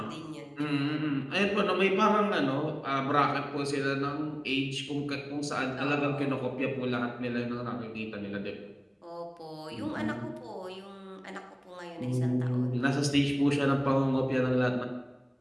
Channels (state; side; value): identical; both; correlation 1.00